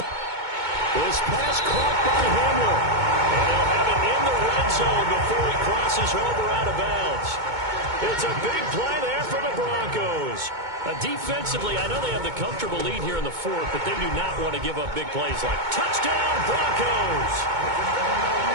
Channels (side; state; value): left; late; 2.2 ms